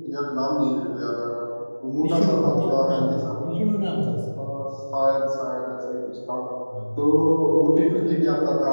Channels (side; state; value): both; inverted; correlation -1.00